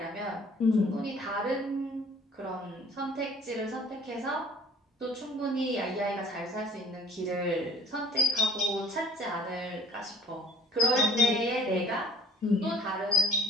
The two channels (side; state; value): both; normal; correlation 0.51